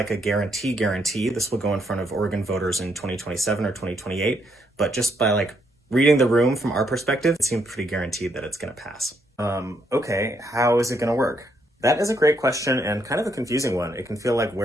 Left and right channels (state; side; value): normal; both; correlation 0.74